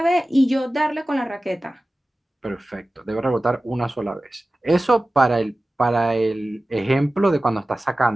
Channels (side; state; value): both; normal; correlation 0.96